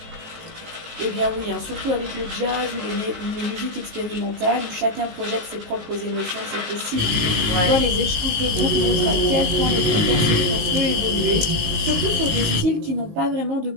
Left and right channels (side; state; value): left; late; 19 ms